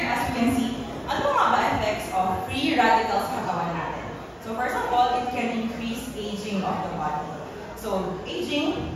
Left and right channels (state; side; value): identical; both; correlation 1.00